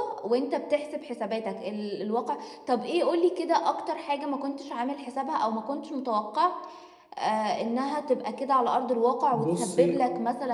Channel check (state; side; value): identical; both; correlation 1.00